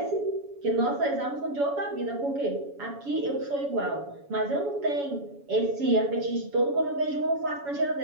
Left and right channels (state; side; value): late; left; 7.1 ms